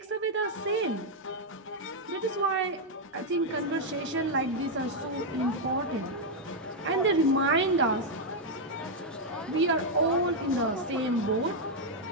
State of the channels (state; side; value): normal; both; correlation -0.01